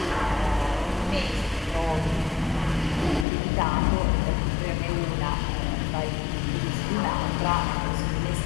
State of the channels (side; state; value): right; drops out; at 3.2 s